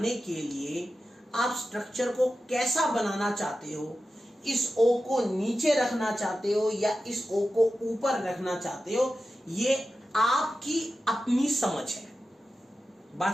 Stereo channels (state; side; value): normal; both; correlation 0.92